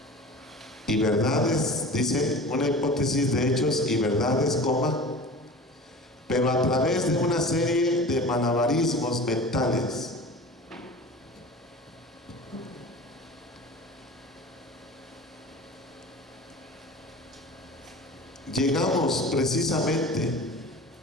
Y verdades, dice, una hipótesis de hechos y verdades, coma, pero a través de una serie de malabarismos mentales. Llegamos precisamente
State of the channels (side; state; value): both; normal; correlation 0.37